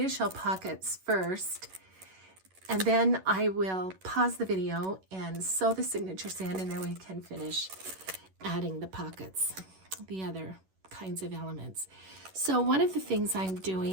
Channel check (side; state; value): left; late; 11 ms